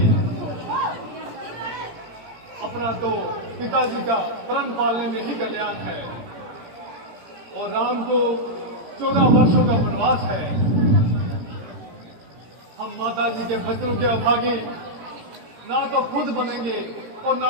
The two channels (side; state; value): left; late; 18 ms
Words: अपना तो पिताजी का प्रण पालने में ही कल्याण है और राम को 14 वर्षों का वनवास है। हम माताजी के वचनों के अभागे ना तो खुद बनेंगे और